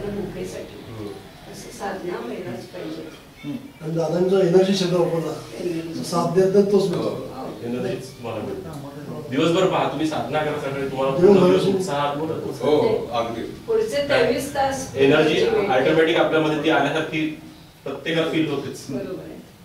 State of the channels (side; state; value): both; identical; correlation 1.00